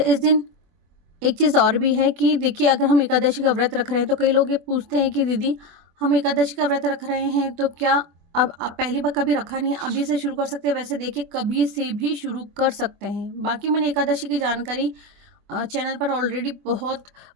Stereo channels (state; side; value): late; left; 24 ms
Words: इस दिन एक चीज़ और भी है कि देखिए, अगर हम एकादशी का व्रत रख रहे हैं तो कई लोग ये पूछते हैं कि दीदी, हम एकादशी का व्रत रख रहे हैं तो क्या अब आप पहली बार कभी रखा नहीं है, अभी से शुरू कर सकते हैं? वैसे देखिए, कभी से भी शुरू कर सकते हैं। बाकी मैंने एकादशी की जानकारी चैनल पर ऑलरेडी बहुत